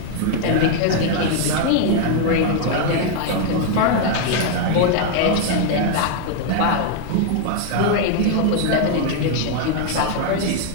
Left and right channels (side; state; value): both; different; correlation 0.00